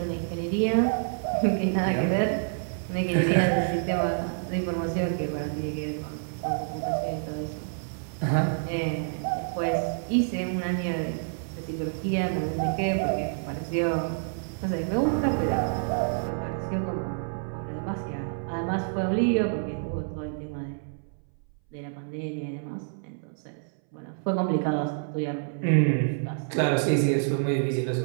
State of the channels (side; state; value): left; silent; 59 dB below the other